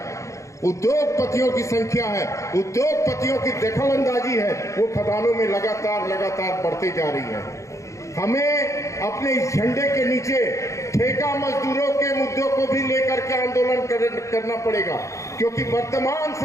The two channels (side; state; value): right; late; 0.15 ms